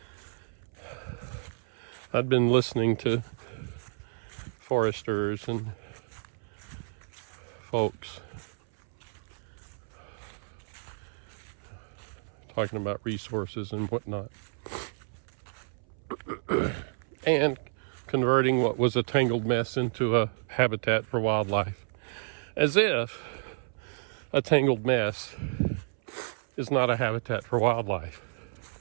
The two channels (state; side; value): silent; left; 57 dB below the other